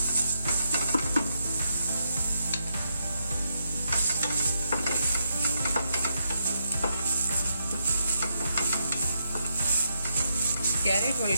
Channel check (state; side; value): inverted; both; correlation -0.80